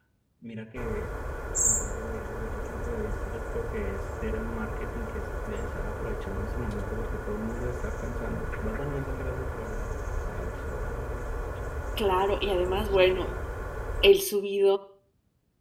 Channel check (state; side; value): identical; both; correlation 1.00